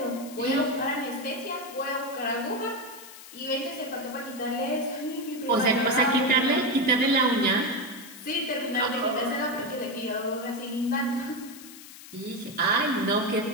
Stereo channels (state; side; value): noise; left; hiss, 16 dB below the sound